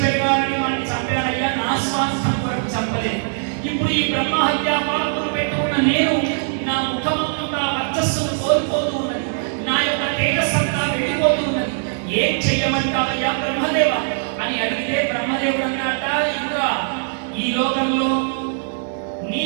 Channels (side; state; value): left; silent; digital silence